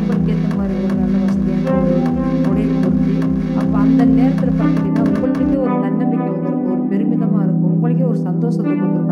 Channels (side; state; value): both; identical; correlation 1.00